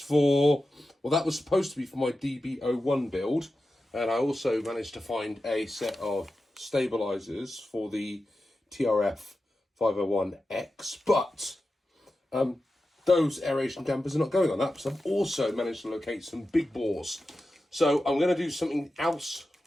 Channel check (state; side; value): normal; both; correlation 0.92